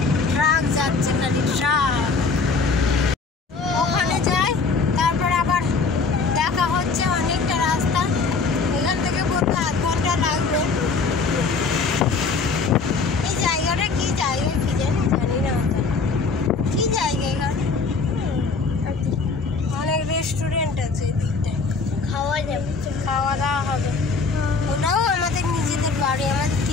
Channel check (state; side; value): quieter; right; 4.5 dB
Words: ট্রাক যাচ্ছে, খালি ট্রাক। ওখানে যাই, তারপর আবার দেখা হচ্ছে। অনেকটা রাস্তা, এখান থেকে বলতে আধ ঘন্টা লাগবে। এই জায়গাটা কি জায়গা কি জানি না কি জায়গা। এখানে অনেক রেস্টুরেন্ট আছে এদিকটায়, খাওয়া দাওয়া হবে। ওটাও আমাদের নিজেদের বাড়ি, আমাদের